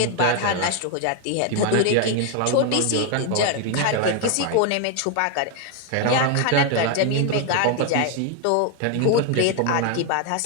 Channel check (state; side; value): different; both; correlation 0.01